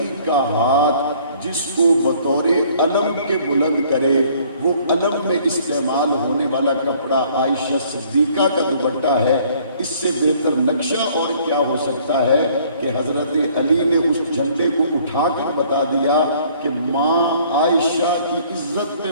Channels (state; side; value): inverted; both; correlation -0.58